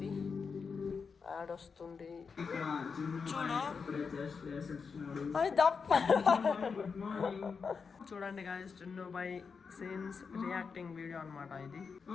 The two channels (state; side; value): quieter; right; 5.5 dB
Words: యాడ్ వస్తుంది చూడు, చూడండి గాయస్, జున్ను బాయ్ సీన్స్ రియాక్టింగ్ వీడియో అనమాట ఇది